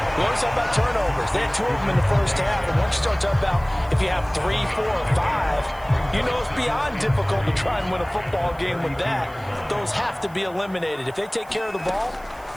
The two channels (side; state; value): right; noise; hiss, 26 dB below the sound